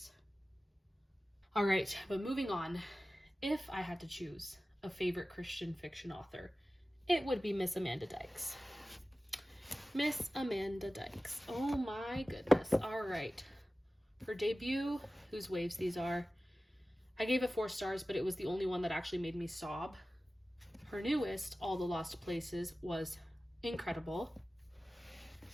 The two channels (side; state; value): both; normal; correlation 0.96